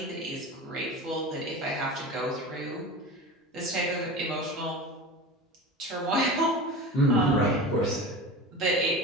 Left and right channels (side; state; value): both; normal; correlation 0.31